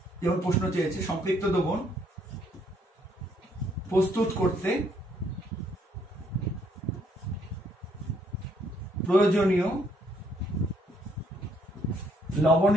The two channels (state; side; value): normal; both; correlation 0.68